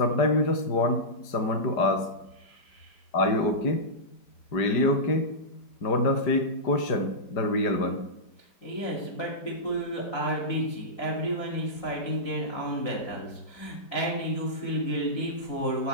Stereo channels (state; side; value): late; right; 5.0 ms